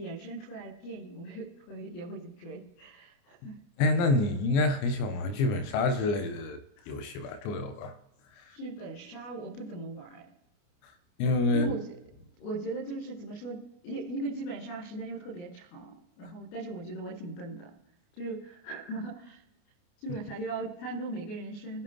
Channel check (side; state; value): right; late; 29 ms